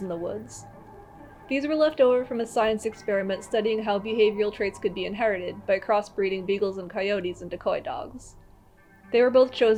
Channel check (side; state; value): both; identical; correlation 1.00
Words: in the woods. These were left over from a science experiment studying how behavioral traits could be inherited by crossbreeding beagles and coyotes into decoy dogs. They were both